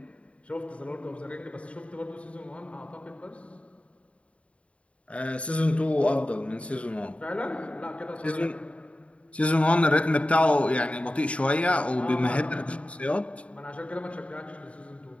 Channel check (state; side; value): late; right; 0.062 ms